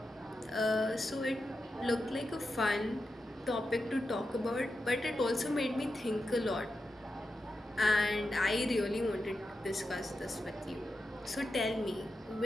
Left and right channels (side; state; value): both; normal; correlation 0.89